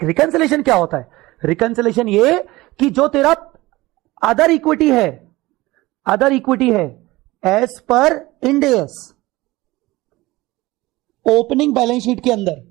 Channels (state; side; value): quieter; left; 19.7 dB